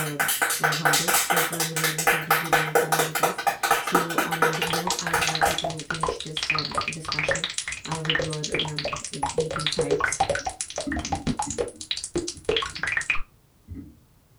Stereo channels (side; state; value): both; identical; correlation 1.00